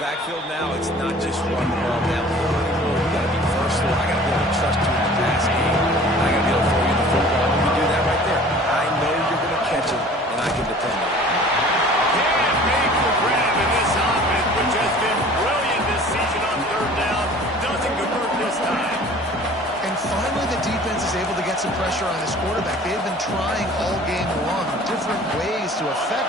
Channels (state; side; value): normal; both; correlation 0.47